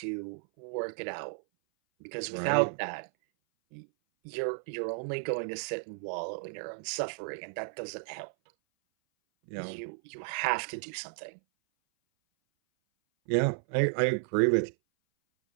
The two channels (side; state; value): left; silent; 56 dB below the other